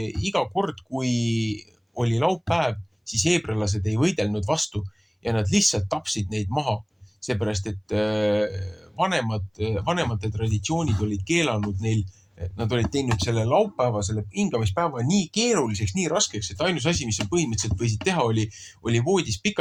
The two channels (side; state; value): both; identical; correlation 1.00